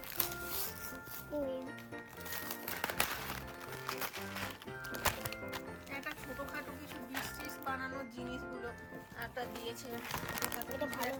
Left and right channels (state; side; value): identical; both; correlation 1.00